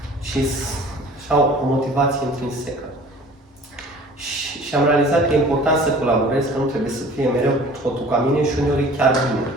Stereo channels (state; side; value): normal; both; correlation 0.47